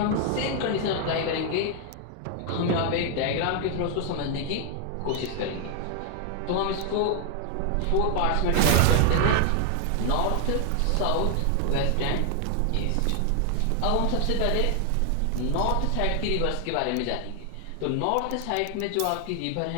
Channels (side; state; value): both; different; correlation 0.00